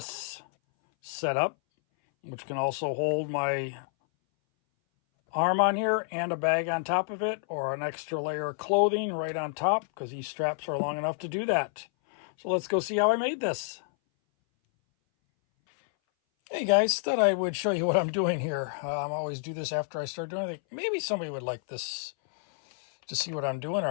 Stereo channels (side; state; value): right; silent; 59 dB below the other